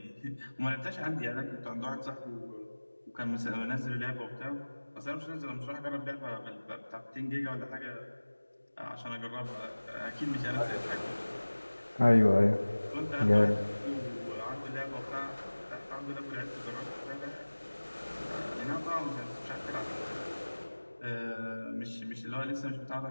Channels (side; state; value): both; inverted; correlation -1.00